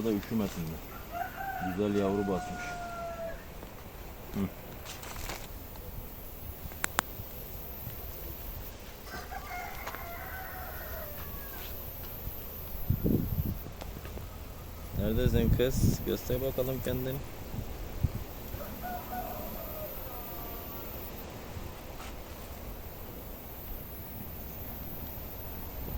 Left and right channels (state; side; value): identical; both; correlation 1.00